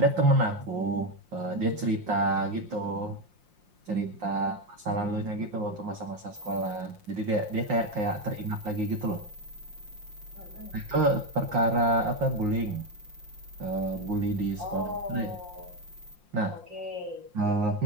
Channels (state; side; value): late; left; 5.7 ms